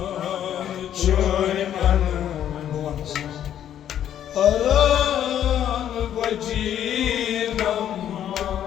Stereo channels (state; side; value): quieter; right; 10.4 dB